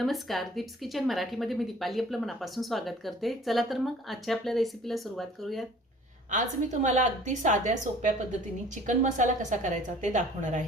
दीप्स किचन मराठीमध्ये मी दीपाली आपलं मनापासून स्वागत करते. चला तर मग आजच्या आपल्या रेसिपीला सुरुवात करूयात. आज मी तुम्हाला अगदी साध्या सोप्या पद्धतीने चिकन मसाला कसा करायचा ते दाखवणार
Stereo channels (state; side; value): normal; both; correlation 0.50